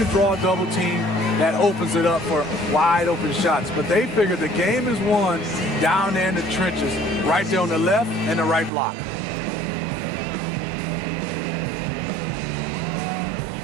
draw a double team that opens it up for wide open shots. But they figure the game is won down there in the trenches, right there on the left and the right block.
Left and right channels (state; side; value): drops out; left; at 8.7 s